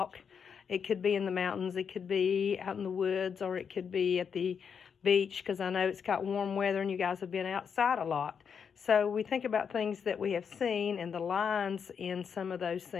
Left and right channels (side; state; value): right; quieter; 6.8 dB